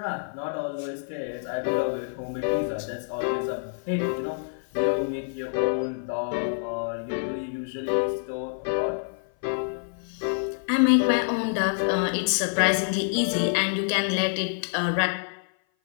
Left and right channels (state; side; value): silent; right; 56 dB below the other